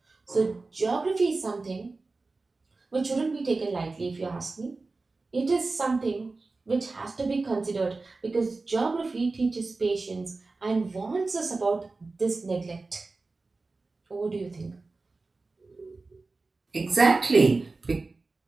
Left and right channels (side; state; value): left; quieter; 3.6 dB